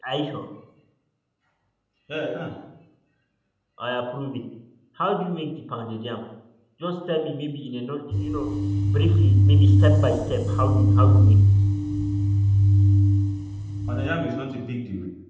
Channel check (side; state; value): both; identical; correlation 1.00